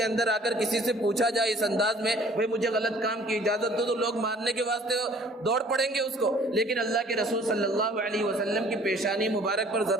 اندر آ کر کسی سے پوچھا جائے اس انداز میں بھئی مجھے غلط کام کی اجازت دو، تو لوگ مارنے کے واسطے دوڑ پڑیں گے اس کو، لیکن اللہ کے رسول صلی اللہ علیہ وسلم کی پیشانی مبارک پر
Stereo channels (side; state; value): both; normal; correlation 0.54